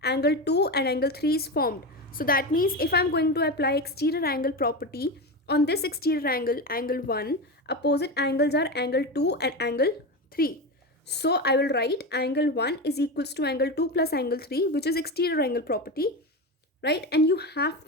angle 2 and angle 3 is formed. So that means if I'm going to apply exterior angle property on this exterior angle, angle 1, opposite angles are angle 2 and angle 3. So I will write angle 1 is equals to angle 2 plus angle 3, which is exterior angle property, right? And you have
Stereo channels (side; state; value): both; normal; correlation 0.20